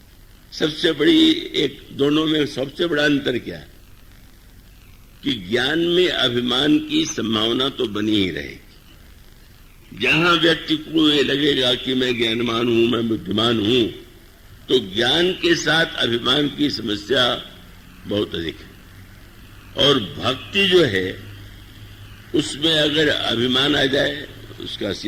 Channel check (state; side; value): identical; both; correlation 1.00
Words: सबसे बड़ी दोनों में सबसे बड़ा अंतर क्या है कि ज्ञान में अभिमान की संभावना तो बनी ही रहेगी। जहां व्यक्ति को ये लगेगा कि मैं ज्ञानवान हूं, मैं बुद्धिमान हूं, तो ज्ञान के साथ अभिमान की समस्या बहुत अधिक है। और भक्ति जो है उसमें अगर अभिमान आ जाए, उसका